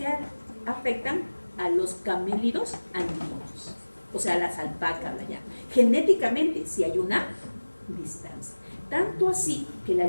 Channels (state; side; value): inverted; both; correlation -1.00